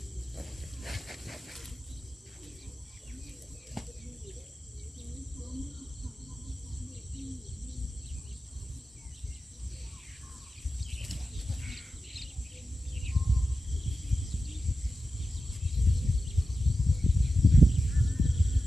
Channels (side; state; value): both; normal; correlation 0.92